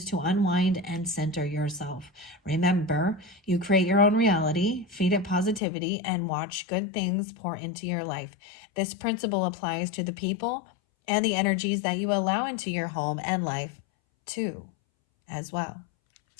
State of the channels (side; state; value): right; drops out; at 5.6 s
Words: to unwind and center yourself. Remember, you create your own reality, feed it positivity, and watch good things pour into your life. This principle applies to the people and the energies that you allow into your home and life too, as well.